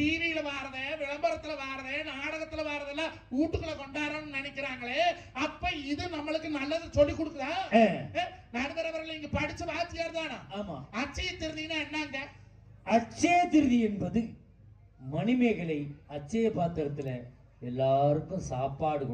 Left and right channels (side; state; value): both; identical; correlation 1.00